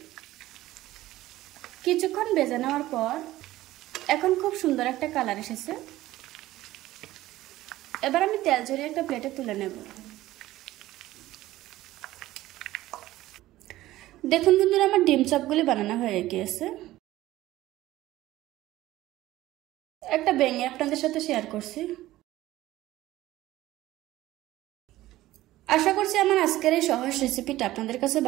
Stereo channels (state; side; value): quieter; left; 16.0 dB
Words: কিছুক্ষণ ভেজে নেওয়ার পর এখন খুব সুন্দর একটা কালার এসেছে। এবার আমি তেল ঝরিয়ে একটা প্লেটে তুলে নেব। দেখুন বন্ধুরা, আমার ডিম চপগুলি বানানো হয়ে গিয়েছে। একটা ভেঙে আপনাদের সাথে শেয়ার করছি। আশা করছি আমার আজকের এই সহজ রেসিপিটা আপনাদের কাছে